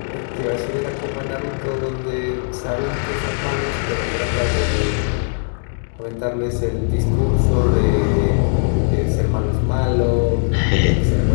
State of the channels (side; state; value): right; silent; digital silence